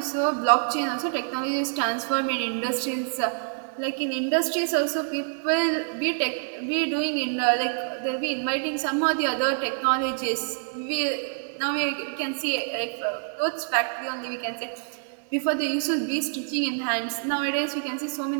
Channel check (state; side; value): silent; left; digital silence